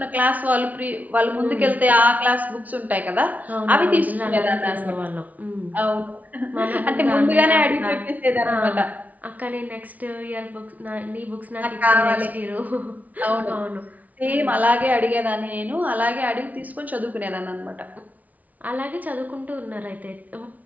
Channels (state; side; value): late; left; 0.074 ms